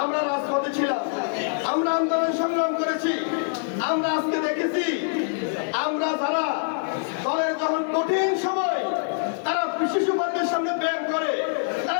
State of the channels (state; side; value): silent; right; digital silence